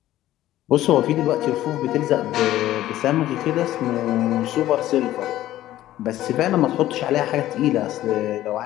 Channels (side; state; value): right; quieter; 14.2 dB